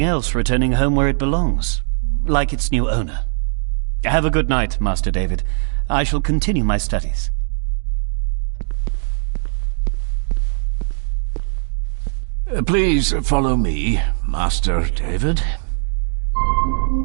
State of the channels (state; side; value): silent; left; digital silence